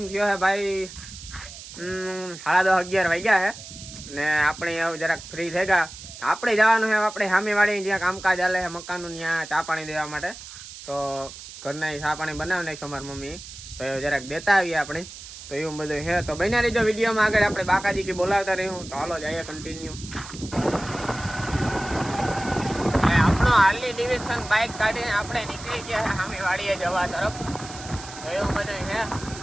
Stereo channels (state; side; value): noise; right; hiss, 14 dB below the sound